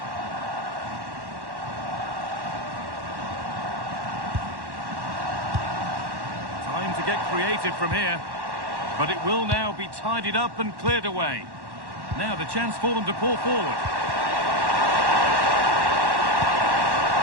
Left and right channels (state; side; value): late; left; 1.1 ms